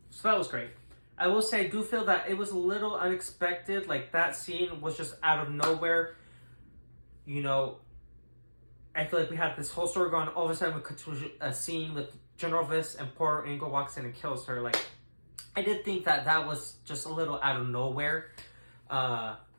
So that was great. I will say, I do feel that it was a little unexpected. Like, that scene was just out of nowhere. I feel like we had this whole story going. All of a sudden, we cut to a scene with General Viss, and Porter Engle walks in and kills her. Like, I did think that was just a little out of nowhere. I'm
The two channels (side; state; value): both; inverted; correlation -1.00